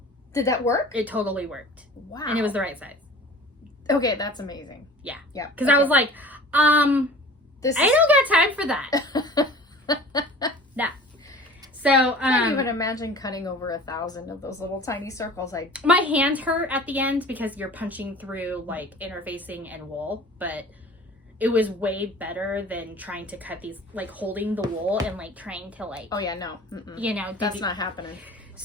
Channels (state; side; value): normal; both; correlation 0.42